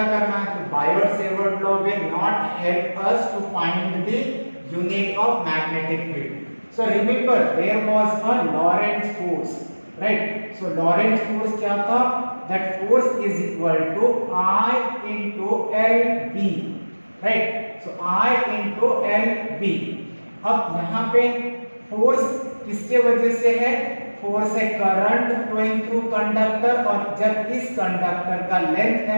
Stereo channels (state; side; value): inverted; both; correlation -1.00